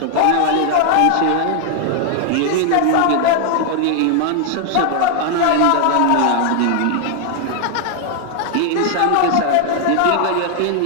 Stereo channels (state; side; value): different; both; correlation 0.00